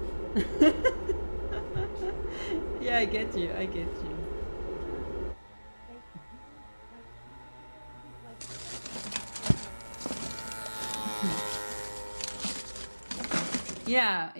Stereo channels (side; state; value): both; inverted; correlation -1.00